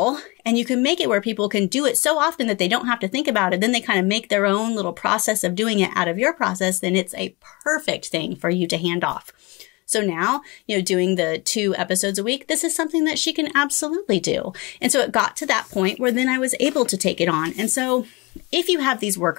and you can make it where people can do it so often that they don't have to think about it, then they kind of make their own little process of doing it out of your process, then it's a perfect thing for you to hand off. So now, doing the 2 episodes a week, this is something that she can absolutely do. And so it got to that point where then I was able to take it on. And so if you have these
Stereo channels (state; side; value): quieter; right; 25.3 dB